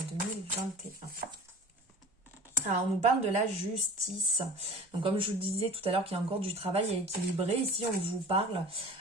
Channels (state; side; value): normal; both; correlation 0.40